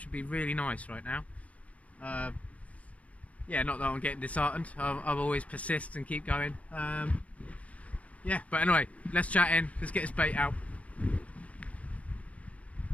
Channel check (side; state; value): right; late; 0.066 ms